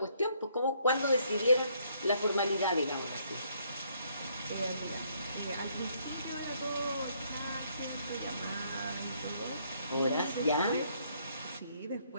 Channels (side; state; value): both; inverted; correlation -0.69